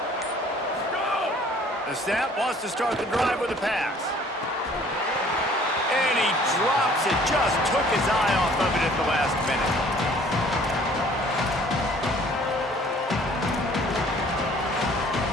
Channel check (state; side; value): normal; both; correlation 0.55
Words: The snap wants to start the drive with a pass. And he drops it, just took his eye off of it at the last minute.